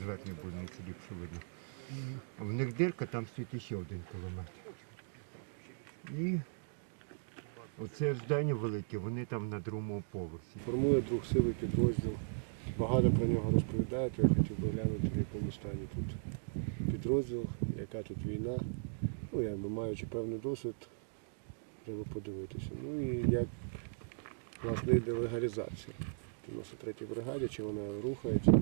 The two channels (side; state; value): left; silent; digital silence